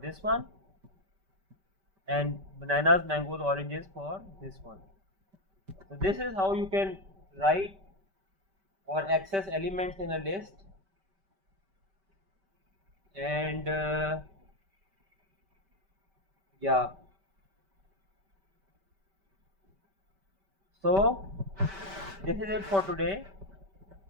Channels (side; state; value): left; late; 5.2 ms